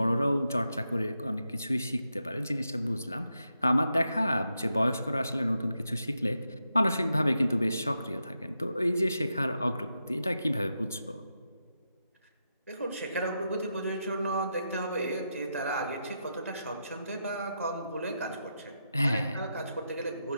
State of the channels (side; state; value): both; inverted; correlation -0.86